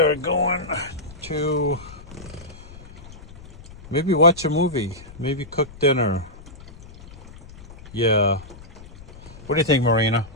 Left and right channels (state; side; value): noise; left; rumble, 18 dB below the sound